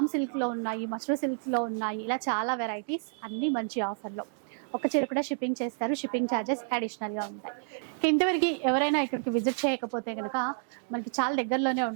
సిల్క్లో ఉన్నాయి, మష్రూ సిల్క్లో ఉన్నాయి. ఇలా చాలా వెరైటీస్ అన్నీ మంచి ఆఫర్లో. ఒక చీర కూడా షిప్పింగ్ చేస్తారు. షిప్పింగ్ ఛార్జెస్ అడిషనల్గా ఉంటాయి. ఇంతవరకు ఎవరైనా ఇక్కడికి విజిట్ చేయకపోతే కనుక మనకి చాలా దగ్గరలోనే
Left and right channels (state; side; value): silent; left; digital silence